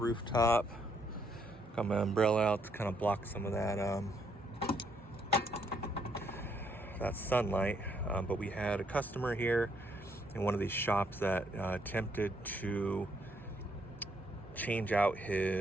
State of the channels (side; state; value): both; normal; correlation 0.72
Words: Got my umbrella out to kind of block some of that sunlight. But we had a customer here in one of these shops that attempted to change out